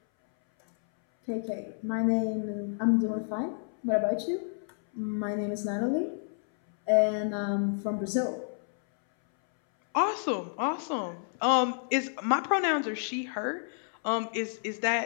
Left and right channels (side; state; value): right; silent; 58 dB below the other